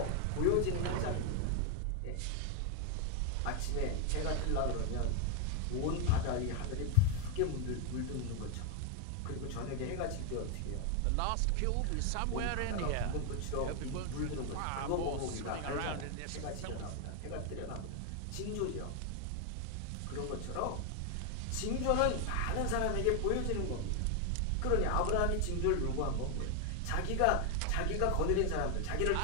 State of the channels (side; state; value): both; different; correlation 0.01